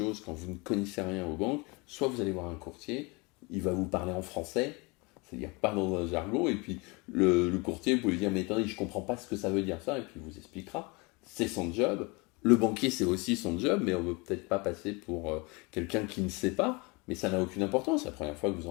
quand vous ne connaissez rien aux banques, soit vous allez voir un courtier, il va vous parler en français, c'est-à-dire pas dans un jargon, et puis le courtier, vous pouvez lui dire, mais attendez, je comprends pas ce que ça veut dire ça, et puis il vous expliquera. C'est son job. Le banquier, c'est aussi son job, mais on ne veut peut-être pas passer pour quelqu'un qui ne sait pas, mais ça n'a aucune importance. La première fois que vous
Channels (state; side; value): quieter; right; 27.5 dB